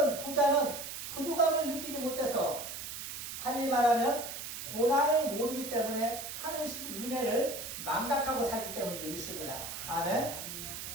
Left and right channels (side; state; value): right; noise; hiss, 7 dB below the sound